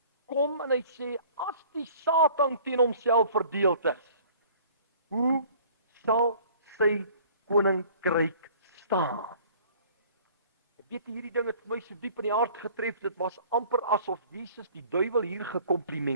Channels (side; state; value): both; inverted; correlation -0.51